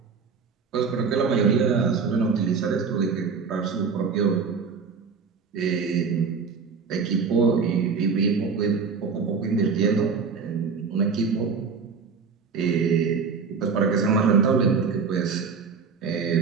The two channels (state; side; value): quieter; left; 5.5 dB